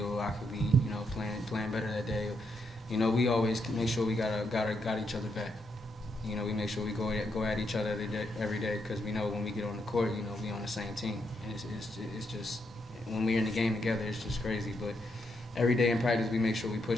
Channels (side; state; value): both; normal; correlation 0.79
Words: or I could be, you know, playing better that day. You know, we always make sure we got each other back. You know, we make sure we go at each other every day because we know when we get on the court, you know, we on the same team. And it's just when we're in the game together, it's just crazy. But every day in practice, we make sure we